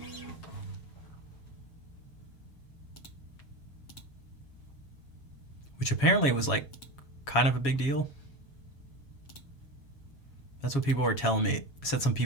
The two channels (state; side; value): late; right; 7.2 ms